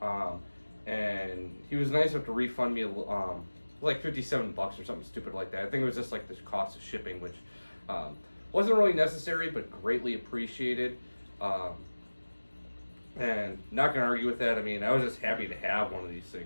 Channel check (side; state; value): both; inverted; correlation -1.00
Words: and he was nice enough to refund me like $57 or something stupid like that. I think it was just like the cost of shipping, which wasn't really necessary, but greatly appreciated. And not gonna argue with that. I mean, I was just happy to have one of these